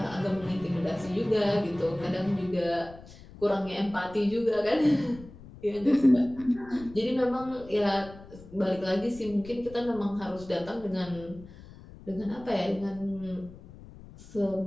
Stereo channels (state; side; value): noise; left; rumble, 18 dB below the sound